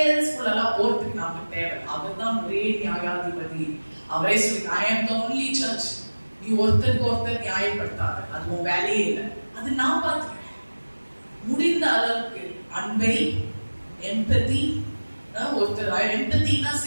எல்லாம் போறதுக்கு நமக்கு தேவை. அவர் தான் ஒரே நியாயாதிபதி. அவரே சொல்லி I am the only judge. நீ ஒருத்தருக்கு நியாயப்படுத்தாத, அது உன் வேலையே இல்லை. அது நான் பார்த்துக்கிறேன். முடிந்த அளவுக்கு அன்பை, எம்பதி, ஒருத்தர் எம்பத்தினா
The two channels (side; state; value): both; inverted; correlation -1.00